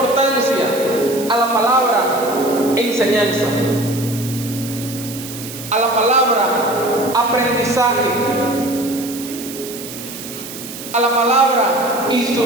a la palabra enseñanza. a la palabra aprendizaje, a la palabra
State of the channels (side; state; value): right; noise; hiss, 11 dB below the sound